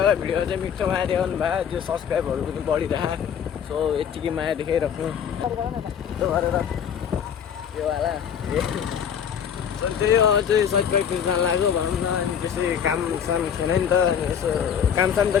भिडियो चाहिँ मिठो माया देखाउनु भयो त्यो सब्सक्राइबहरू पनि बढिरह सो यत्तिकै माया देखाइराख्नु त्यो गरेर यो वाला त्यही हो चाहिँ सट प्र्याक्टिस जान लाग्यो भनौँ न अनि त्यसै काम साम थिएन नि त अनि यसो काम साम त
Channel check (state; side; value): quieter; right; 8.1 dB